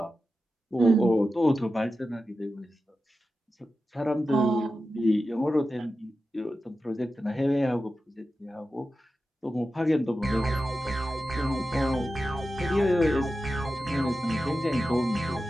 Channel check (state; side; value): normal; both; correlation 0.92